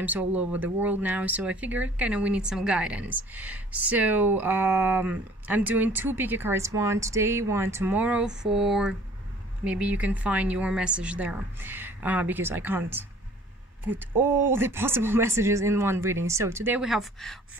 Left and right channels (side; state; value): both; normal; correlation 0.52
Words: all over the world now, so I figured we need some guidance. So I'm doing two pick a cards, one today, one tomorrow, for maybe you can find your message there, because I can't put all the possible messages in one reading. So today we have